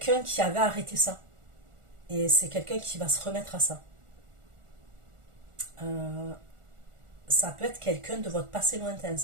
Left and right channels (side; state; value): left; late; 1.4 ms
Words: qui avait arrêté ça. Et c'est quelqu'un qui va se remettre à ça. Euh, Ça peut être quelqu'un de votre passé lointain,